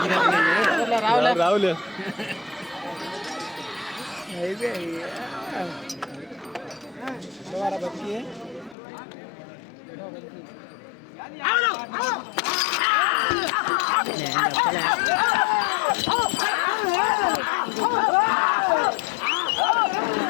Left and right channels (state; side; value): drops out; right; at 8.8 s